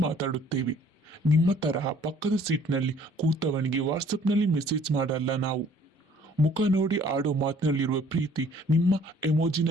ಮಾತಾಡುತ್ತೇವೆ. ನಿಮ್ಮ ತರಹ ಪಕ್ಕದ ಸೀಟ್ನಲ್ಲಿ ಕೂತವನಿಗೆ ವಾಟ್ಸಪ್ನಲ್ಲಿ ಮೆಸೇಜ್ ಮಾಡಲ್ಲ ನಾವು. ಮುಖ ನೋಡಿ ಆಡೋ ಮಾತಿನಲ್ಲಿರುವ ಪ್ರೀತಿ ನಿಮ್ಮ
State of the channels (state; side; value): normal; both; correlation 0.57